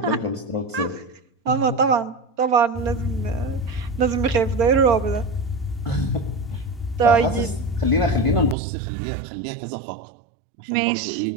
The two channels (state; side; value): drops out; left; at 8.6 s